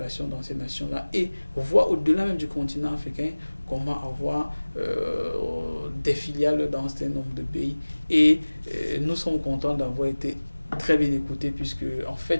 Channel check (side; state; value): both; inverted; correlation -1.00